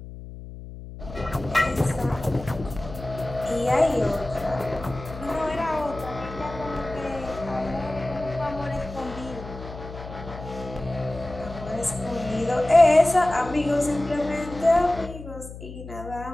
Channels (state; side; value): noise; left; hum, 13 dB below the sound